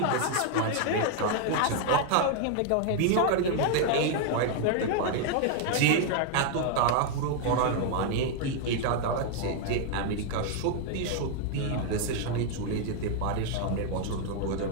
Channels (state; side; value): different; both; correlation 0.00